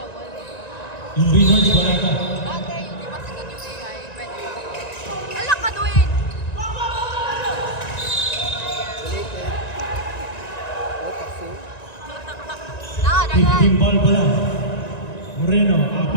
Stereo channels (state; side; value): late; right; 1.9 ms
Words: wala? Yung Reynolds, wala na. Bagay, hindi pa sikat yung AI. Pwede ba? Alak ka, Dwayne! Nakadagan! 15 ball pa lang. Moreno,